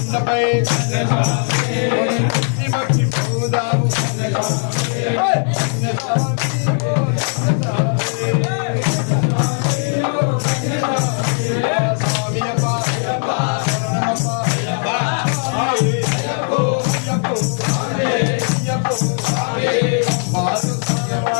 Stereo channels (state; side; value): silent; right; 59 dB below the other